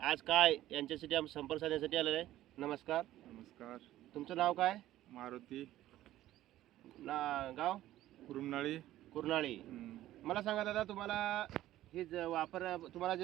काय यांच्यासाठी आम्ही संपर्क साधण्यासाठी आलेलो आहे. नमस्कार. नमस्कार. तुमचं नाव काय? मारुती गाव? कुरुमनाळी. कुर्नाळी. मला सांगा दादा, तुम्हाला हे तुम्हाला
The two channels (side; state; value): left; quieter; 14.3 dB